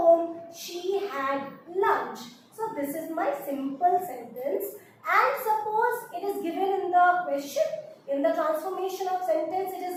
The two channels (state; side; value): identical; both; correlation 1.00